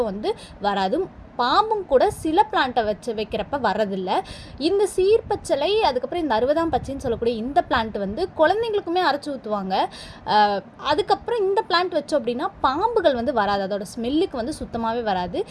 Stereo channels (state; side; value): identical; both; correlation 1.00